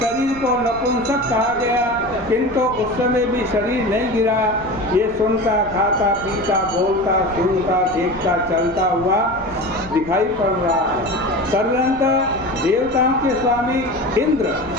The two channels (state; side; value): noise; right; rumble, 16 dB below the sound